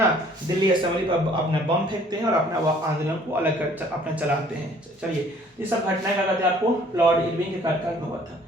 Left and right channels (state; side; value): normal; both; correlation 0.57